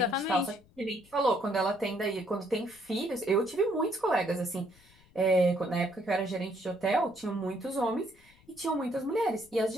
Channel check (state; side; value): noise; left; rumble, 29 dB below the sound